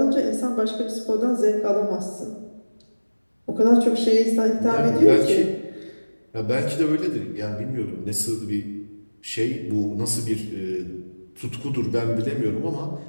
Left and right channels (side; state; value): both; inverted; correlation -1.00